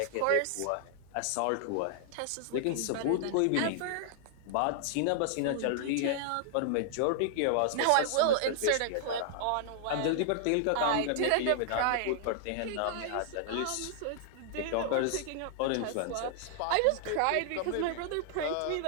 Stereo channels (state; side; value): different; both; correlation -0.01